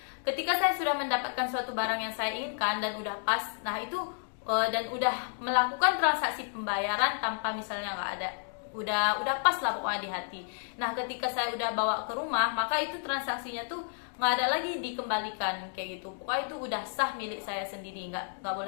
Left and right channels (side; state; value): right; silent; digital silence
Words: ketika saya sudah mendapatkan suatu barang yang saya inginkan dan udah pas, nah itu dan udah melakukan transaksi pembayaran tanpa misalnya nggak ada, udah pas lah pokoknya di hati. Nah, ketika saya udah bawa ke rumah, maka itu transaksinya tuh nggak ada lagi dikembalikan kayak gitu. Pokoknya itu udah sah milik saya sendiri, nggak